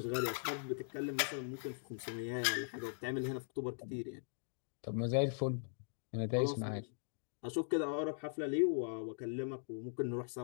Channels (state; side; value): silent; right; digital silence